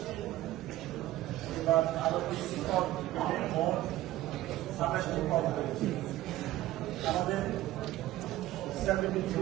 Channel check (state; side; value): quieter; left; 15.3 dB